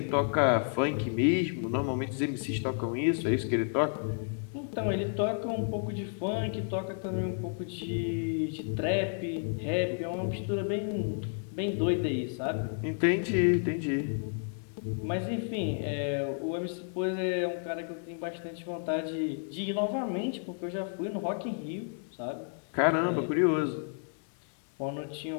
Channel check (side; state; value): right; silent; 57 dB below the other